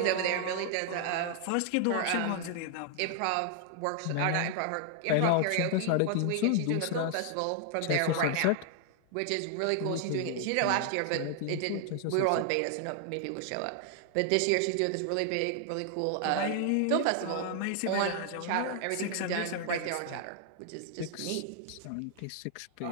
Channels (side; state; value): both; different; correlation 0.00